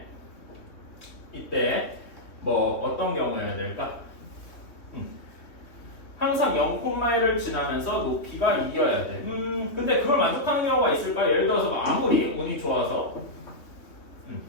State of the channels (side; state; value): right; late; 3.0 ms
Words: 이때 뭐 어떤 경우여야 될까? 항상 0,1을 지나면서 높이가 2여야 돼. 근데 그걸 만족하는 경우가 있을까? 예를 들어서 뭐 아무리 운이 좋아서